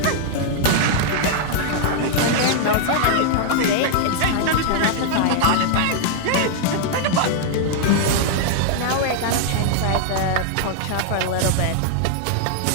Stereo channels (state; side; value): different; both; correlation -0.01